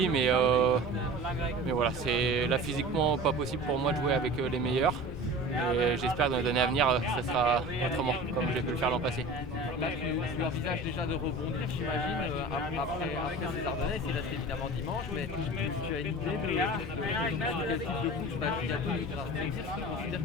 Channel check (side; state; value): both; normal; correlation 0.37